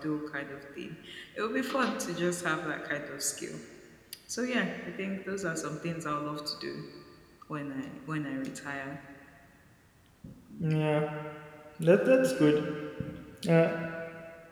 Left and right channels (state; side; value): identical; both; correlation 1.00